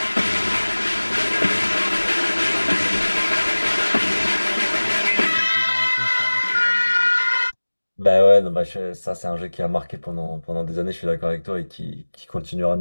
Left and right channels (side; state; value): both; inverted; correlation -1.00